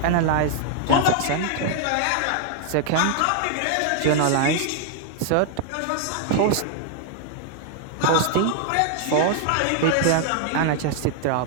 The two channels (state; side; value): different; both; correlation 0.00